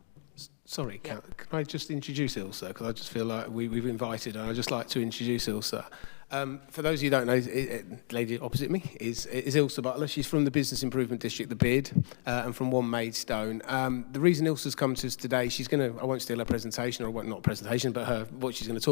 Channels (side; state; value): right; silent; digital silence